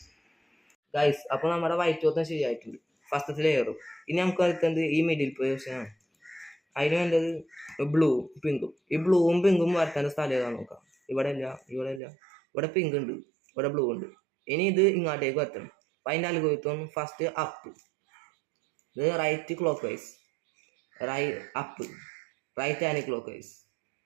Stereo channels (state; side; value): drops out; left; at 12.0 s